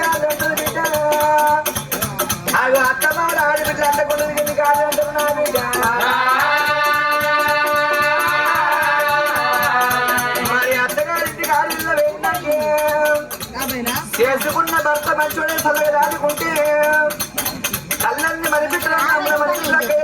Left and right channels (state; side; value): identical; both; correlation 1.00